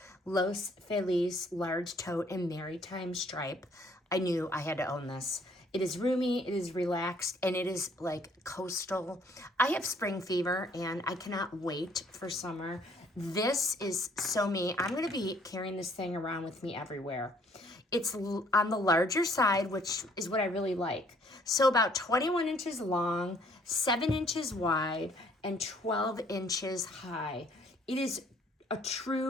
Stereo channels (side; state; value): both; normal; correlation 0.62